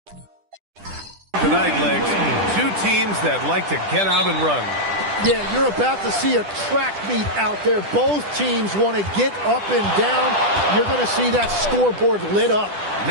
Tonight, Legs, two teams that like to get out and run. Yeah, you're about to see a track meet out there. Both teams want to get up and down. You're going to see that scoreboard lit up.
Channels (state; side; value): late; left; 10 ms